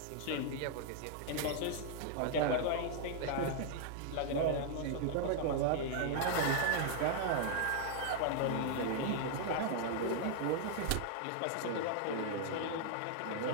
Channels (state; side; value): different; both; correlation 0.00